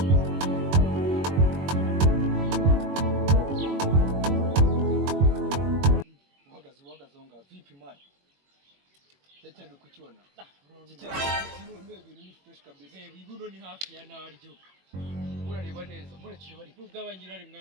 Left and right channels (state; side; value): late; left; 21 ms